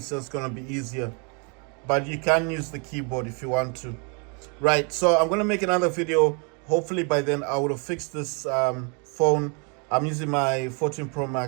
just going to be easier. But you can use the keyboard if you want to. Right, so I'm going to make another video. Hopefully by then I would have fixed this phone. I'm using my 14 Pro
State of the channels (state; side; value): quieter; left; 35.7 dB